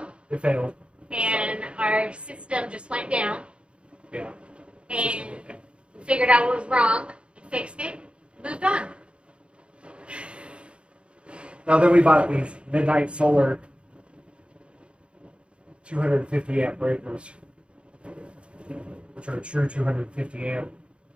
It failed. And our system just went down. Yeah. And we figured out what was wrong, fixed it, moved on. Now then we bought these Midnight Solar 250 amp breakers, which are a true 250 amp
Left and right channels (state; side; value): late; left; 0.057 ms